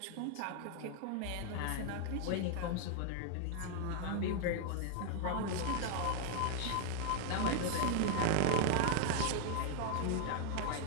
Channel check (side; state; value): both; different; correlation 0.00